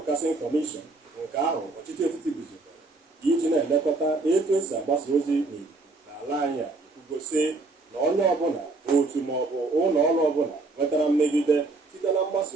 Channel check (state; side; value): quieter; left; 3.4 dB